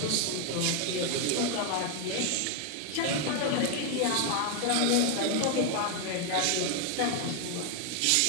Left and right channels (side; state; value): both; different; correlation 0.01